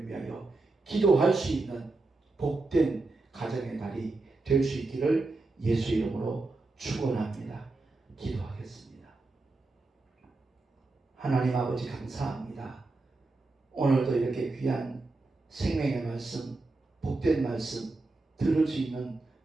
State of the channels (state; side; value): quieter; left; 3.3 dB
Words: 위하여 기도할 수 있는 복된 가정의 날이 될 수 있기를 예수 이름으로 축원합니다. 기도하겠습니다. 하나님 아버지 감사합니다. 오늘도 이렇게 귀한 생명의 말씀, 복된 말씀 들을 수 있는